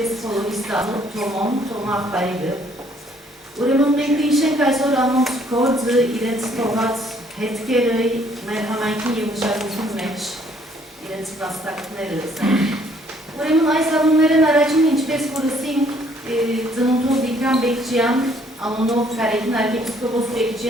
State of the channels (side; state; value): both; normal; correlation 0.63